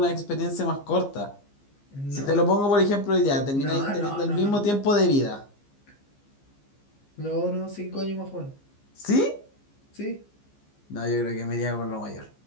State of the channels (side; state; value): right; late; 15 ms